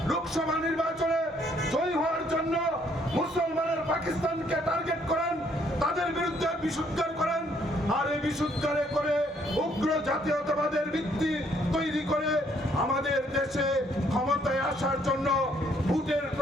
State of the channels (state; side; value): normal; both; correlation 0.67